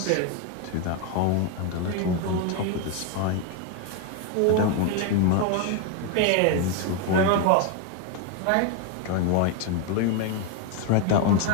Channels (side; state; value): both; different; correlation 0.01